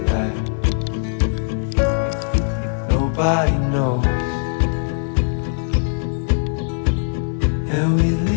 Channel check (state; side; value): silent; right; digital silence